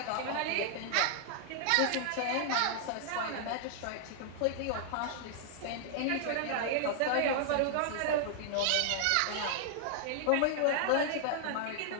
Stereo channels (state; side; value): different; both; correlation -0.01